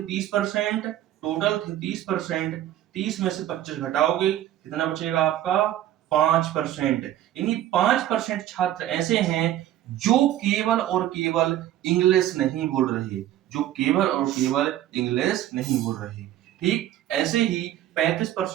30%, टोटल थे 30%, 30 में से 25 घटाओगे कितना बचेगा आपका 5%। यानी 5% छात्र ऐसे हैं जो केवल और केवल इंग्लिश नहीं बोल रहे, जो केवल और केवल इंग्लिश नहीं बोल रहे। ठीक ऐसे ही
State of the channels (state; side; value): quieter; left; 12.7 dB